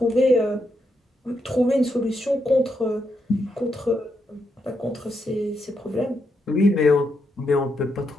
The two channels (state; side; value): normal; both; correlation 0.81